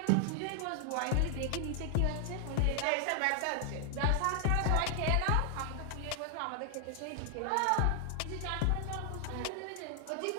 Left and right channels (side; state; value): both; different; correlation 0.00